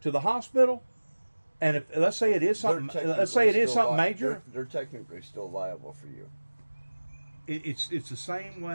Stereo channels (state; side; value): inverted; both; correlation -1.00